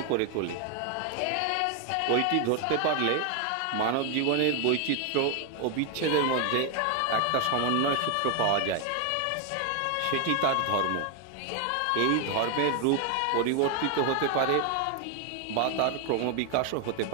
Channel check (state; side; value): different; both; correlation 0.01